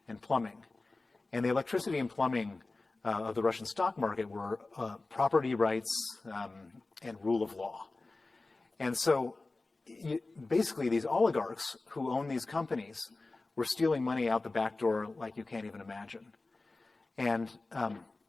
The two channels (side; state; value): right; quieter; 3.3 dB